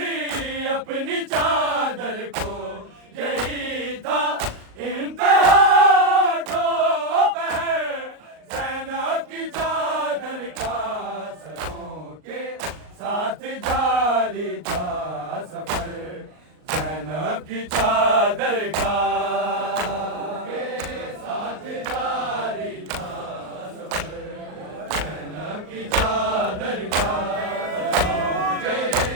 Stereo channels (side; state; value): left; late; 38 ms